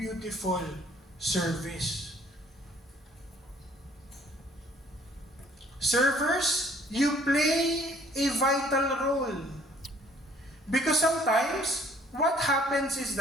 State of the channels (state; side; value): normal; both; correlation 0.59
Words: service? Servers, you play a vital role. Because sometimes, what happens is